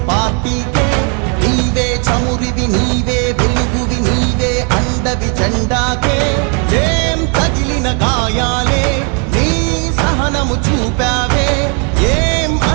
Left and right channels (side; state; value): left; quieter; 38.1 dB